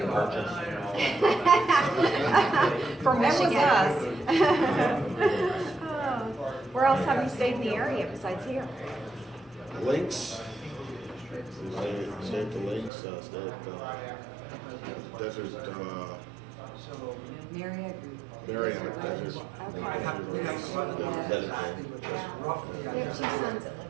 purchase. From That was Michigan. us. Oh. Where else have you stayed in the area besides here? Links. Stay at the Links, stay at Desert, Marriott. Marriott Desert. We have one Yeah. exactly, but just roughly. We have 2 sons that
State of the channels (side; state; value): left; drops out; at 12.9 s